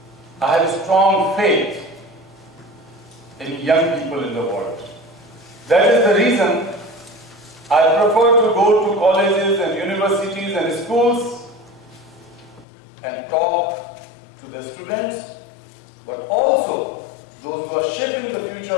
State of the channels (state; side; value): drops out; right; at 12.7 s